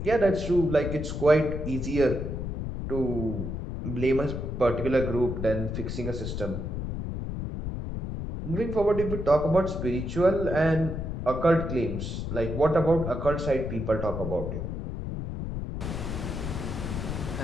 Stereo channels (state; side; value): noise; left; rumble, 5 dB below the sound